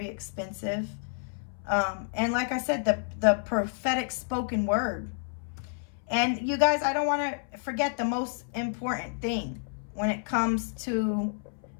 expensive. And like I said, the prophetic spoken word. And you guys, I don't want to forget the most important thing when it comes to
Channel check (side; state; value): right; silent; 58 dB below the other